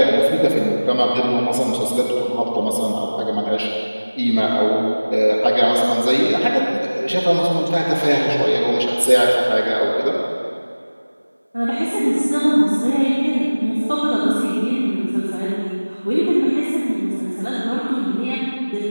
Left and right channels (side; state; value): both; inverted; correlation -1.00